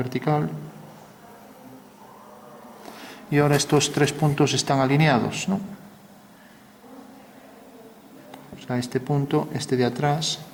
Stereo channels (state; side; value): identical; both; correlation 1.00